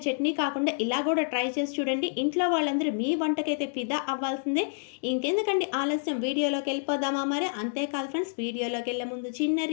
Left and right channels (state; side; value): silent; right; digital silence